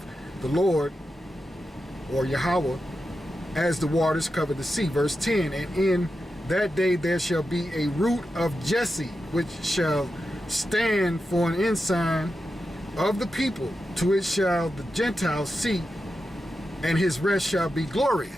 the Lord, or Yahweh, as the waters cover the sea. Verse 10, and in that day there shall be a root of Jesse, which shall stand for an ensign of the people. To it shall the Gentiles seek, and his rest shall be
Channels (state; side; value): normal; both; correlation 0.90